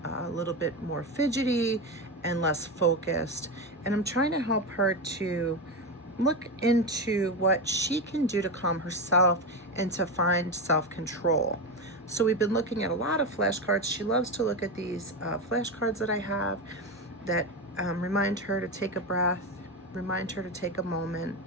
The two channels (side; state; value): both; normal; correlation 0.16